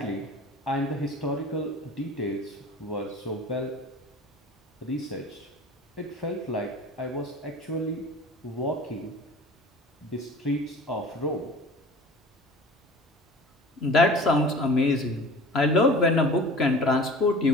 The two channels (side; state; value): both; normal; correlation 0.42